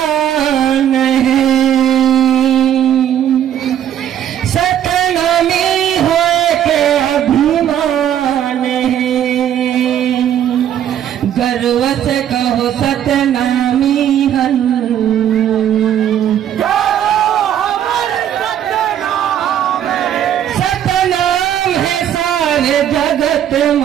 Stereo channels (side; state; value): left; quieter; 10.3 dB